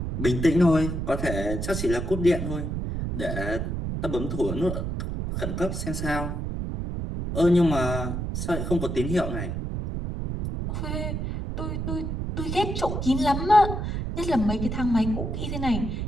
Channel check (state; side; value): noise; right; rumble, 3 dB below the sound